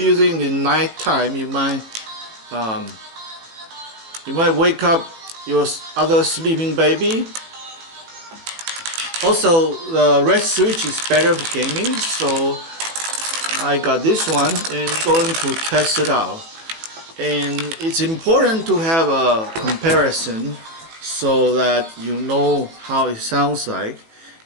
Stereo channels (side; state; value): left; late; 18 ms